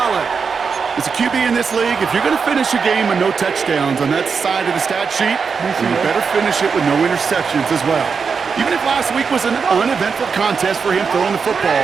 As a QB in this league, if you're going to finish a game with no touchdowns on that side of the stat sheet, then you better finish it with no interceptions as well. Even if last week was an uneventful contest for him throwing the football,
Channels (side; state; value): left; quieter; 5.6 dB